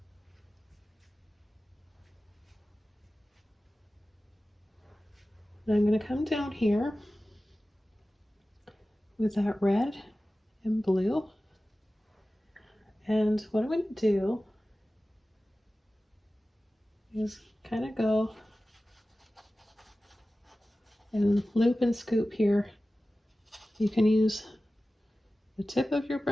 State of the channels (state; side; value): normal; both; correlation 0.96